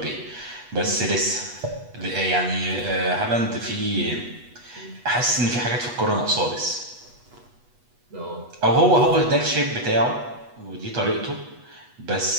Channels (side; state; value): left; late; 8.2 ms